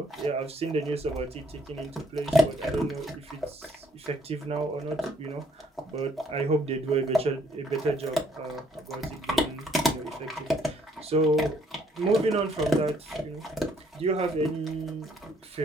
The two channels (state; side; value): normal; both; correlation 0.66